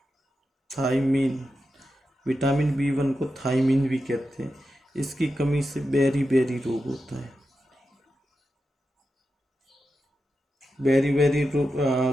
विटामिन B1 को थायमीन भी कहते हैं। इसकी कमी से बेरी रोग होता है। बेरी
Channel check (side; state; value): both; normal; correlation 0.89